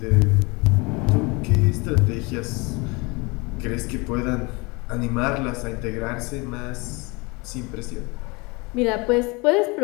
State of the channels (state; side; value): quieter; right; 27.1 dB